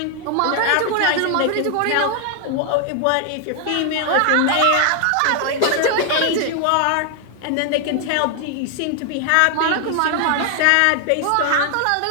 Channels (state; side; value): different; both; correlation 0.00